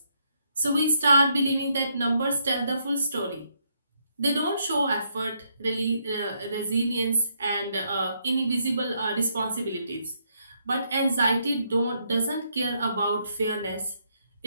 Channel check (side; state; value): both; inverted; correlation -0.75